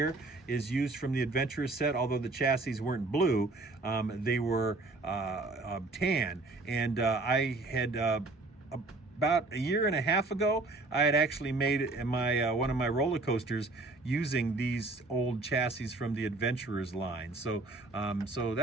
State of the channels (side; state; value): left; quieter; 3.2 dB